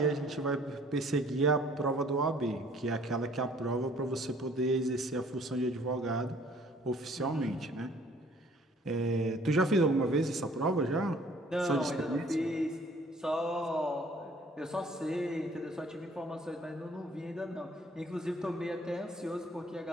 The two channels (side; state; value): both; normal; correlation 0.57